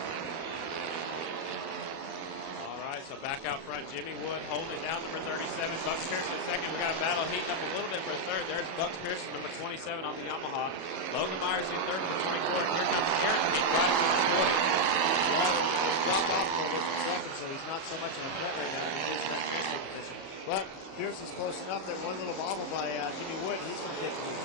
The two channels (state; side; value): late; right; 37 ms